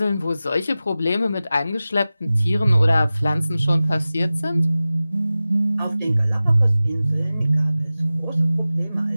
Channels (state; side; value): inverted; both; correlation -0.96